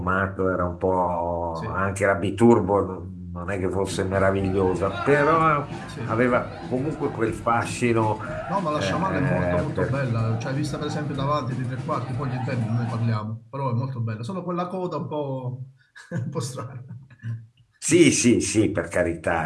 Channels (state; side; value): identical; both; correlation 1.00